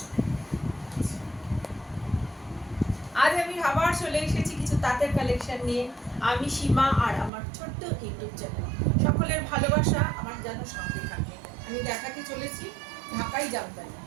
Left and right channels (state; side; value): drops out; left; at 7.3 s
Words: আজ আমি আবার চলে এসেছি কিছু তাঁতের কালেকশন নিয়ে। আমি সীমা আর আমার ছোট্ট ইউটিউব চ্যানেল। সকলের ভালোবাসা আমার যেন সঙ্গে থাকে। আমি দেখাতে চলেছি ঢাকাই জামদানি।